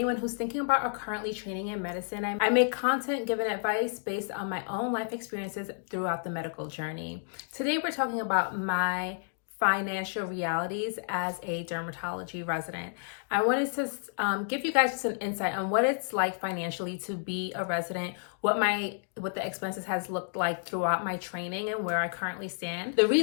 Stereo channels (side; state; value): right; silent; digital silence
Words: who's thinking about or currently training in medicine. I make content giving advice based on my own life experiences throughout the medical journey. Today we're talking about my financial realities as a dermatology resident. I wanted to give you guys just an insight on what it's like financially to be a resident, what the expenses has looked like throughout my training and where I currently stand. The